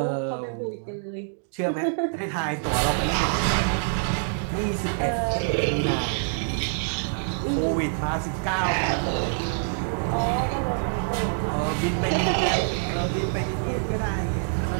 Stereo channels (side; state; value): left; silent; digital silence